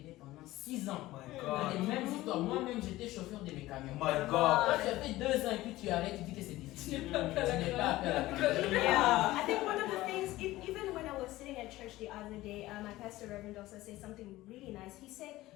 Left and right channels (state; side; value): quieter; right; 17.2 dB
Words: pendant 6 ans. My Dans les God. mêmes histoires. Moi-même, j'étais chauffeur de mes camions. My Quand God. tu as fait 2 ans et puis tu arrêtes, tu dis que c'est difficile. Tu n'es pas appelé à la grandeur. Yeah, I think one of the things, even when I was sitting at church the other day, my pastor Reverend also said something really nice. He said,